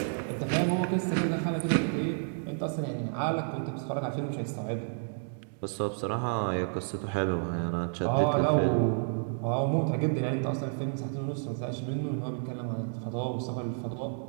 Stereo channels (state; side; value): silent; left; digital silence